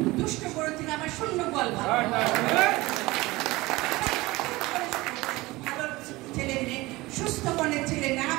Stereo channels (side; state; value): left; quieter; 20.6 dB